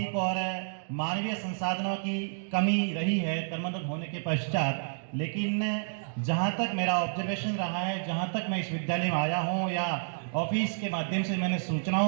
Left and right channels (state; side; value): silent; left; digital silence